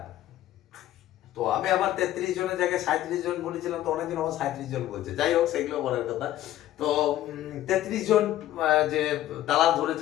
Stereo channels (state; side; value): quieter; right; 13.5 dB